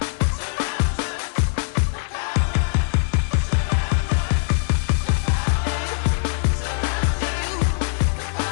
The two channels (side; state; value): right; silent; 64 dB below the other